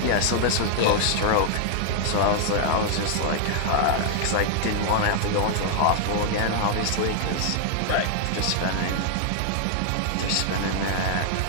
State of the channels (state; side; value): different; both; correlation -0.01